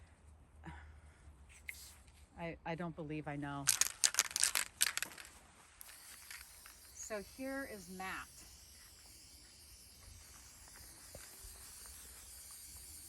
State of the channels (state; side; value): identical; both; correlation 1.00